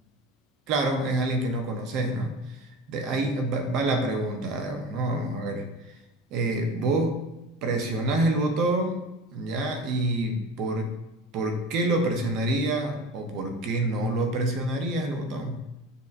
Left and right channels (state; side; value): normal; both; correlation 0.34